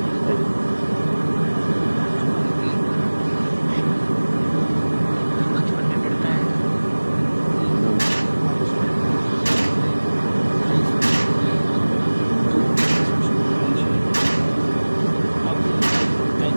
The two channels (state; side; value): inverted; both; correlation -1.00